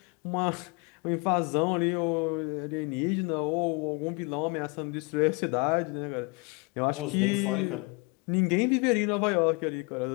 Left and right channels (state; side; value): quieter; right; 29.3 dB